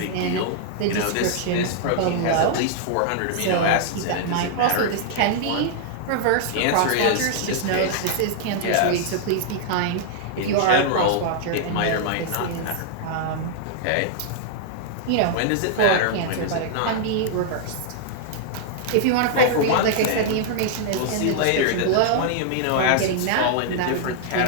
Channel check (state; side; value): different; both; correlation -0.01